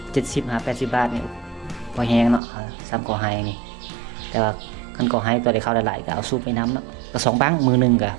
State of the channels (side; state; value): left; drops out; at 2.4 s